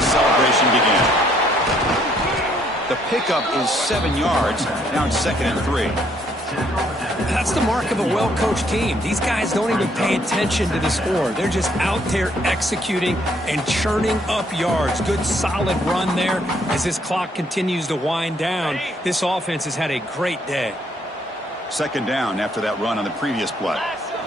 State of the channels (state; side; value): normal; both; correlation 0.68